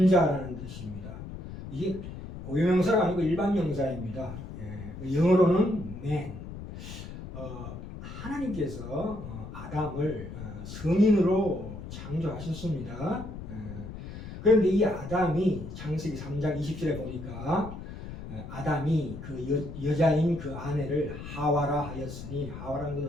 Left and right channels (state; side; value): noise; left; rumble, 10 dB below the sound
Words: 뜻입니다. 이게 고유명사가 아니고 일반 명사입니다. 영어로는 man. 하나님께서 아담을 성인으로 창조하셨습니다. 그런데 이 아담이 창세기 3장 20절에 보니까 아담이 그 여자인 그 아내를 하와라 하였으니, 하와라는